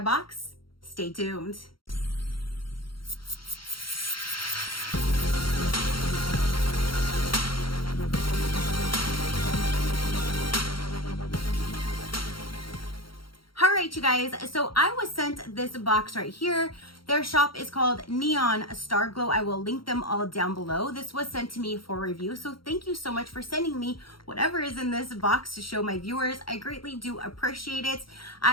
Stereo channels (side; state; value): right; late; 0.73 ms